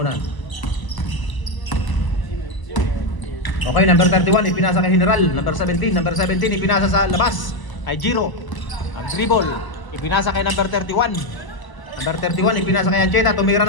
Okay, number 31, ipinasa kay General. Number 17, ipinasa sa labas. Kay Giro. Ang dribble. Ipinasa kay number 31. Number 31, ipinasa kay Ancheta. Tumira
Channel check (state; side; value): late; right; 1.0 ms